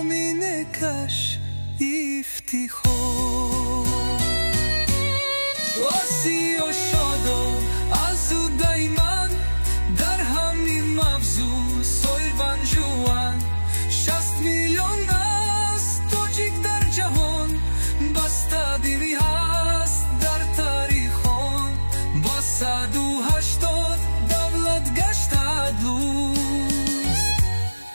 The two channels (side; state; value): both; inverted; correlation -1.00